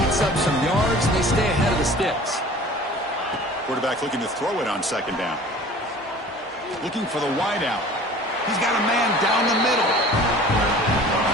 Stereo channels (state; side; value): normal; both; correlation 0.45